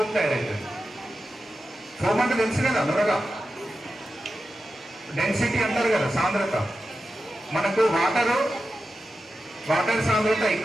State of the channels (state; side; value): normal; both; correlation 0.92